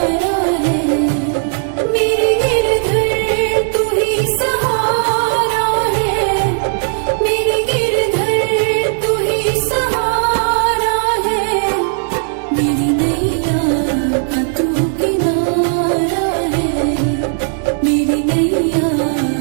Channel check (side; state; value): left; silent; digital silence